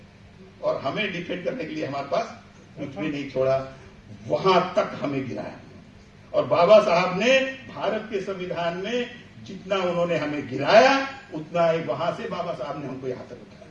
और हमें डिफेंड करने के लिए हमारे पास कुछ भी नहीं छोड़ा। वहां तक हमें गिराया। और बाबा साहब ने भारत के संविधान में जितना उन्होंने हमें गिराया, उतना ही वहां से बाबा साहब ने हमको यहां तक उठाया।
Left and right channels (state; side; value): identical; both; correlation 1.00